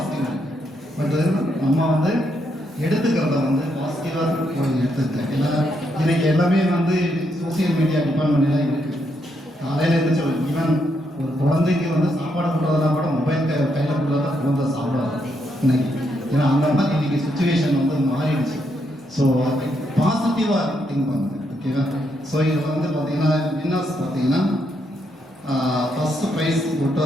இருக்குது. பட் நம்ம வந்து எடுத்துக்கிறத வந்து பாசிட்டிவாக எடுத்துக்கிட்டேன். ஏன்னா இன்னைக்கு எல்லாமே வந்து சோசியல் மீடியா டிபார்ட்மெண்ட்லாம் இருக்குது. காலையில் இருந்துச்சு ஈவன் ஒரு குழந்தைக்கு வந்து சாப்பாடு கொடுறதுனா கூட மொபைல் கையில் கொடுத்தா குழந்தை சாப்பிடாது இன்னைக்கு. ஏன்னா அந்த மாதிரி இன்னைக்கு சுச்சுவேஷன் வந்து மாறிடுச்சு. ஸோ பாசிட்டிவாக திங்க் பண்ணுங்க ஓகேவா? ஸோ இதில் வந்து பார்த்தீங்கன்னா வின்னர்ஸ் பார்த்தீங்கன்னா ஃபர்ஸ்ட் ப்ரைஸ் போட்டு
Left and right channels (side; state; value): both; normal; correlation 0.78